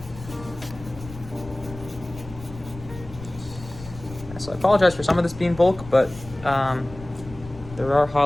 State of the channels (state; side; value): noise; left; rumble, 15 dB below the sound